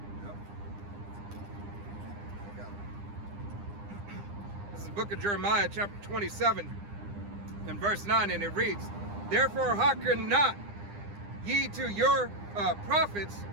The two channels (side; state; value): left; late; 9.9 ms